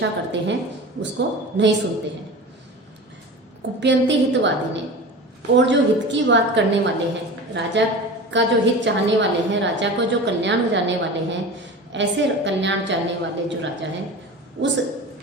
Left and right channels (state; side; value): normal; both; correlation 0.33